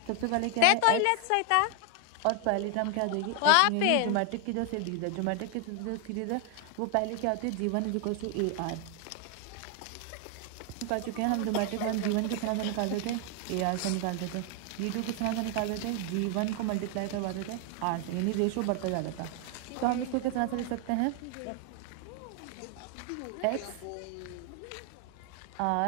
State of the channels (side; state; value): both; different; correlation 0.00